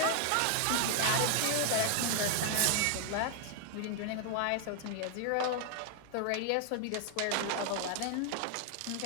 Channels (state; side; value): different; both; correlation 0.00